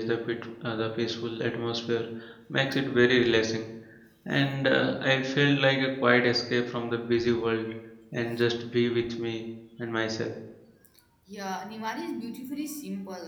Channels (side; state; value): both; identical; correlation 1.00